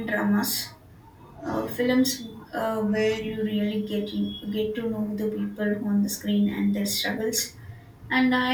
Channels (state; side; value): identical; both; correlation 1.00